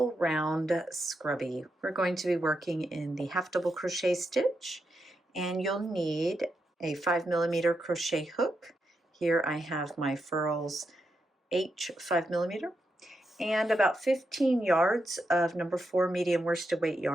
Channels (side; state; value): both; normal; correlation 0.84